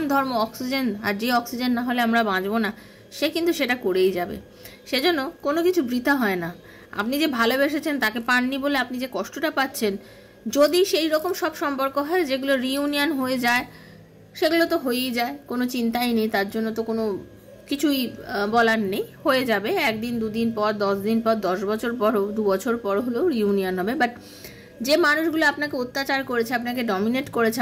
ধর্ম অক্সিজেন, আর যে অক্সিজেন না হলে আমরা বাঁচবো না, সে কিন্তু সেটা করেই যাবে। সেজন্য কোনো কিছু বৃথা হয় না। আপনি যে ভালোবেসেছেন তাকে পাননি বলে আপনি যে কষ্টটা পাচ্ছেন, যদি সেই রকম সব সম্পর্ক হয় যেগুলো রিইউনিয়ন হয়ে যায়, সেগুলো তো হয়েই যায়, কোনো চিন্তাই নেই, তার জন্য তো কোনো কিছুই বলার নেই, হয়ে যাবে। একদিন, দুদিন পর, 10 দিন পর, 10 বছর পর, 2 বছর পর হলেও রিইউনিয়ন হবে। বাট যে মানুষগুলো আপনাকে অত্যাচার করেছে, আপনাকে ডমিনেট করেছে,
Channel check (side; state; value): both; identical; correlation 1.00